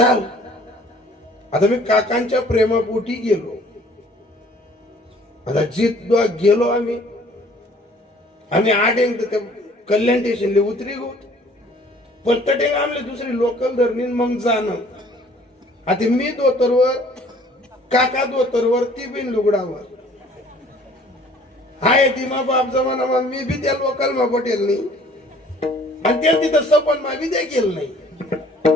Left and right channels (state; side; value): normal; both; correlation 0.55